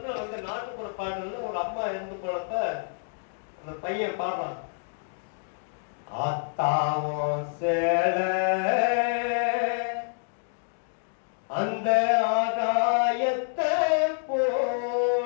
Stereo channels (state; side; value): silent; right; digital silence